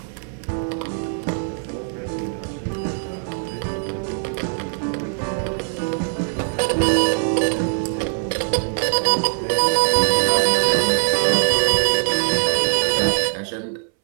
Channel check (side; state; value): left; silent; 62 dB below the other